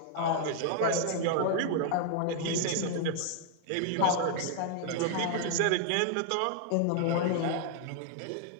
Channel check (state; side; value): different; both; correlation 0.00